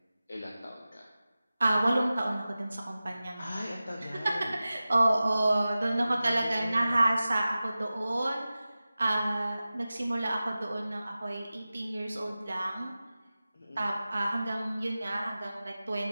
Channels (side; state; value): both; inverted; correlation -0.96